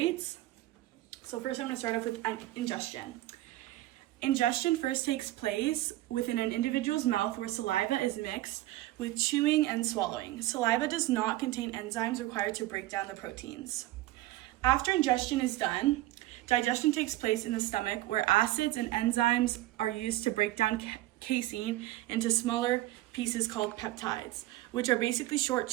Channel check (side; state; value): left; quieter; 16.7 dB